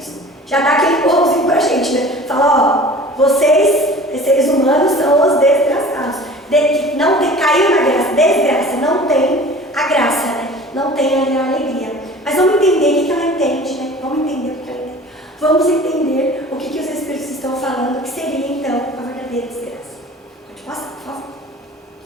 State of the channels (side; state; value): both; normal; correlation 0.43